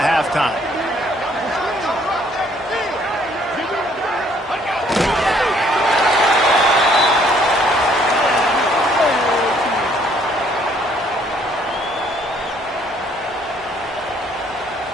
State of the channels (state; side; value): normal; both; correlation 0.63